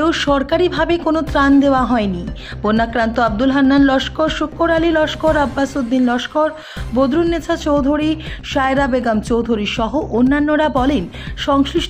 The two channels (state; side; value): identical; both; correlation 1.00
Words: সরকারিভাবে কোনো ত্রাণ দেওয়া হয়নি। বন্যাক্রান্ত আব্দুল হান্নান লস্কর, শুক্কর আলী লস্কর, আব্বাস উদ্দিন লস্কর, বদরুন্নেছা চৌধুরী, সায়রা বেগম চৌধুরী সহ অন্যান্যরা বলেন,